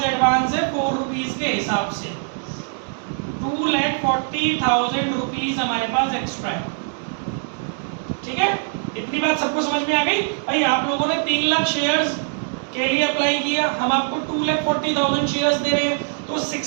एडवांस है 4 रुपीज के हिसाब से। 2,40,000 रुपीज हमारे पास एक्स्ट्रा है, ठीक है। इतनी बात सबको समझ में आ गई? भाई आप लोगों ने 3 लाख शेयर्स के लिए अप्लाई किया, हम आपको 2,40,000 शेयर्स दे रहे हैं, तो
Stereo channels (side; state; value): left; silent; 63 dB below the other